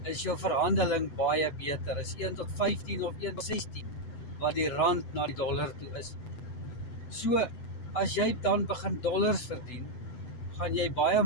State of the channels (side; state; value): right; late; 8.0 ms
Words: is jou verhandeling baie beter. Is 1 tot 15 of 1 tot 16 wat die rand na die dollar toe is. So, as jy dan begin dollars verdien, gaan jy baie